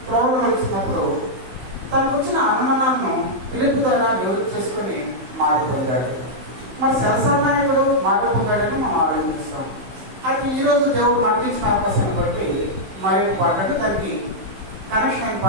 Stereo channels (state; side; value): late; left; 15 ms